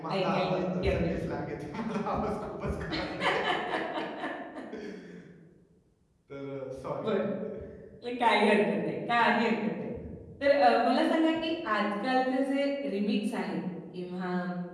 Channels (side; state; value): both; identical; correlation 1.00